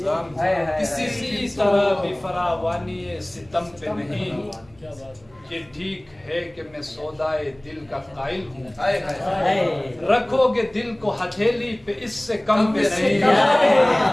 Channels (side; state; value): right; noise; hum, 30 dB below the sound